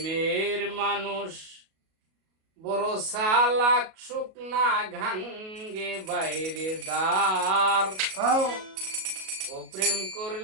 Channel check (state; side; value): late; left; 37 ms